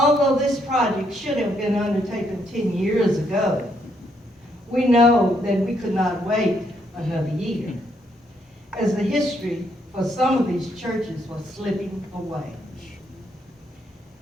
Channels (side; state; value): both; normal; correlation 0.74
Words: this project should have been undertaken 10 years ago, we know that we could not wait another year, as the history for some of these churches was slipping away.